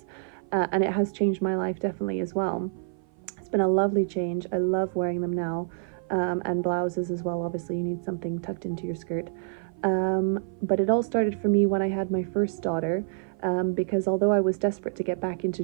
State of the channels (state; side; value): silent; left; 55 dB below the other